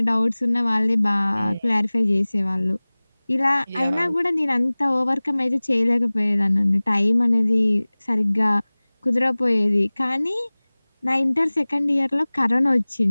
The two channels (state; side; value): inverted; both; correlation -1.00